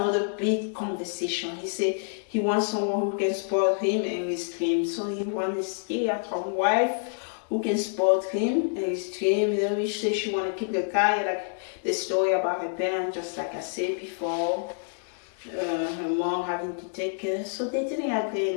big conversation. He said he wants someone who can support him and his dream. So he wants a stay-at-home wife who can support him and his dream. You know, she said she want to keep the guy, like the story about her parents, just like I said before. Her mom having to take care. So they didn't agree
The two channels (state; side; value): silent; right; digital silence